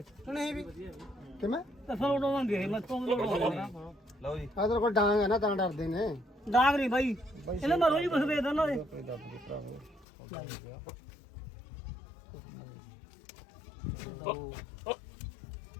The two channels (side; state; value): right; drops out; at 10.1 s